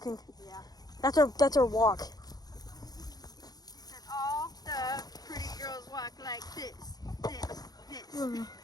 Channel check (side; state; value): right; late; 0.19 ms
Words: Yeah. That's our walk. And all the pretty girls walk like this.